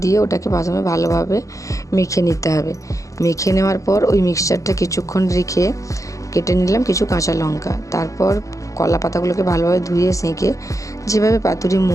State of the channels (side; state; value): right; late; 0.16 ms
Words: দিয়ে ওটাকে প্রথমে ভালোভাবে মেখে নিতে হবে। মেখে নেওয়ার পর ওই মিক্সচারটা কিছুক্ষণ রেখে কেটে নিলাম কিছু কাঁচা লঙ্কা। তারপর কলা পাতাগুলোকে ভালোভাবে ধুয়ে সেঁকে যেভাবে পাতুরি